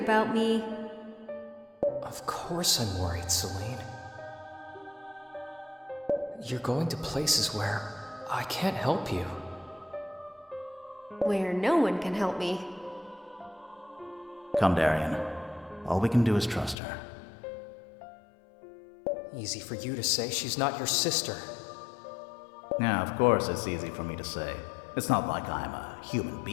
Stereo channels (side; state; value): right; drops out; at 16.8 s